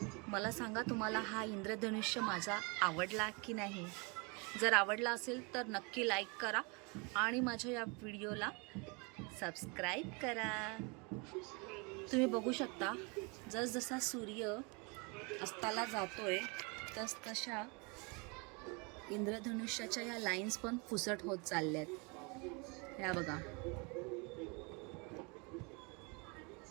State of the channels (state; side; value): quieter; left; 30.9 dB